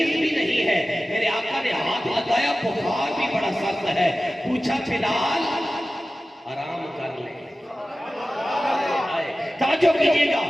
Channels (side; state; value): both; normal; correlation 0.95